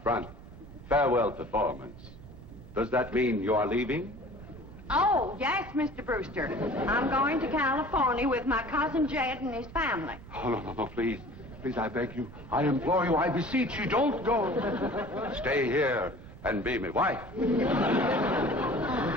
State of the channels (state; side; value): noise; right; rumble, 16 dB below the sound